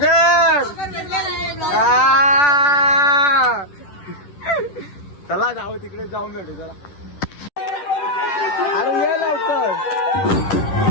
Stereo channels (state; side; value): late; right; 10 ms